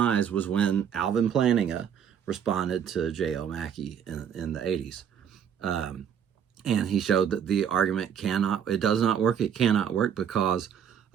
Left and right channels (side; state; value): left; quieter; 8.4 dB